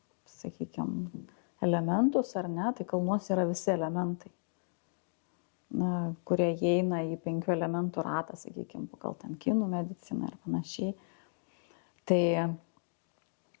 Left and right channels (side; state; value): right; silent; digital silence